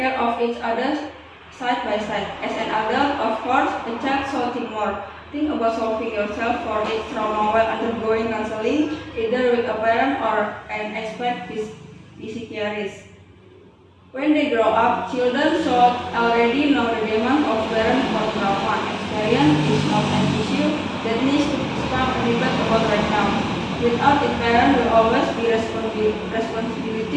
of each other side by side. As an adult, of course, a child should think more. Think about solving yourself for its trauma while undergoing counseling, either with a parent or an expert psychiatrist. When they grow up, children should already know the demand of parents for trauma. Experience is not an issue that needs to spark a debate about right now. Without it, parents will always be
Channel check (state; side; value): identical; both; correlation 1.00